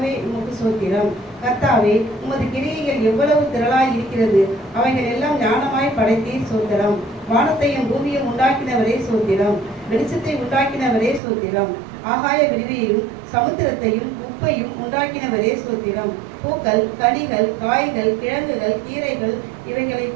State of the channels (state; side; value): drops out; left; at 11.2 s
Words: உமக்கு சோத்திரம். கர்த்தாவே, உமது கிரியைகள் எவ்வளவு திரளாய் இருக்கிறது, அவைகள் எல்லாம் ஞானமாய் படைத்தீர் சோத்திரம். வானத்தையும் பூமியும் உண்டாக்கினவரே சோத்திரம். வெளிச்சத்தை உண்டாக்கினவரே சோத்திரம். ஆகாய விரிவையும் சமுத்திரத்தையும் உப்பையும் உண்டாக்கினவரே சோத்திரம். பூக்கள், கனிகள், காய்கள், கிழங்குகள், கீரைகள் இவைகளை